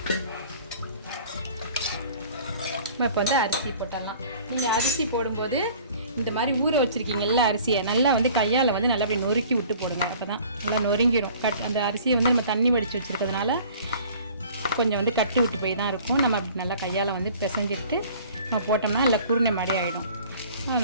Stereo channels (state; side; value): inverted; both; correlation -0.49